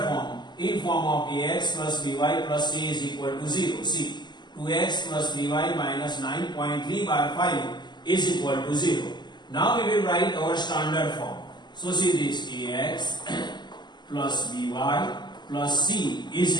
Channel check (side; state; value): right; late; 0.21 ms